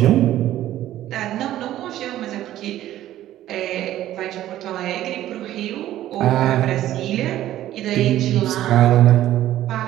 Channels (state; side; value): quieter; left; 13.4 dB